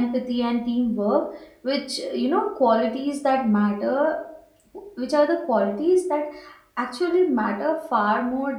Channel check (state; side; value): identical; both; correlation 1.00